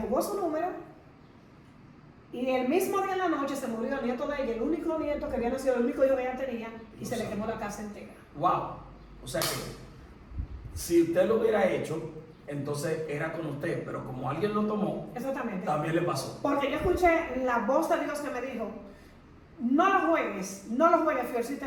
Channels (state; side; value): identical; both; correlation 1.00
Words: jugó su número y el mismo día en la noche se murió el nieto de ella, el único nieto que había nacido, el único hijo que ella tenía, y se le quemó la casa entera. Wow. O sea que si usted lo hubiera hecho, entonces era con usted, pero como alguien lo tomó, exactamente, también le pasó. Porque yo escuché la voz de Dios que me dijo, no lo juegues, Fiorcita,